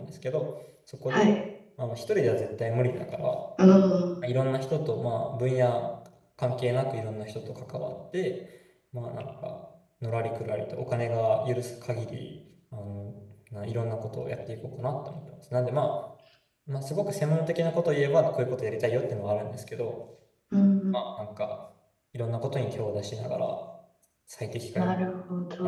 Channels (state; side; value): identical; both; correlation 1.00